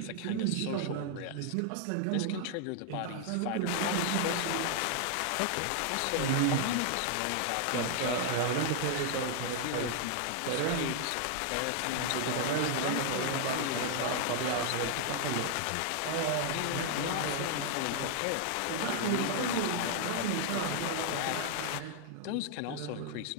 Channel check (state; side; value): different; both; correlation 0.00